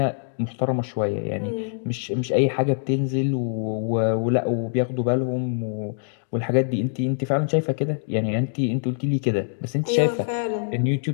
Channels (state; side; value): silent; right; digital silence